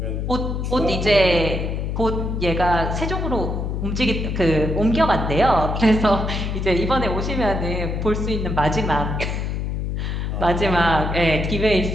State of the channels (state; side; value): noise; left; hum, 2 dB below the sound